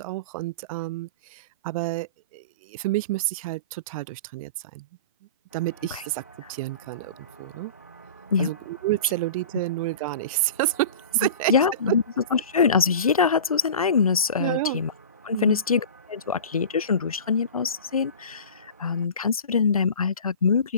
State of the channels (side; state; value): both; inverted; correlation -0.35